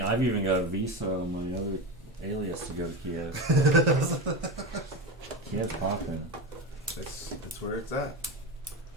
I've even got a visa on my other alias to go to Kiev. Kiev's popping. That's where it's at.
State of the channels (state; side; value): normal; both; correlation 0.20